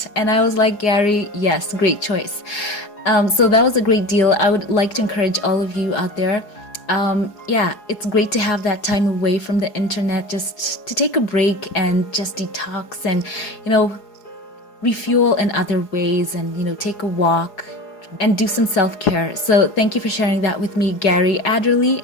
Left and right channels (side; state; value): right; late; 4.8 ms